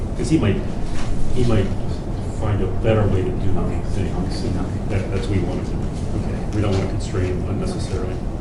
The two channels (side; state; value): both; identical; correlation 1.00